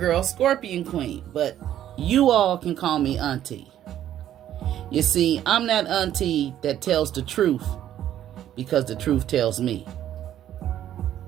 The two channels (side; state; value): left; quieter; 11.5 dB